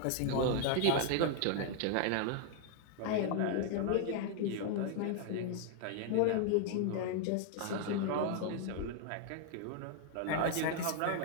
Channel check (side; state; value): both; different; correlation 0.00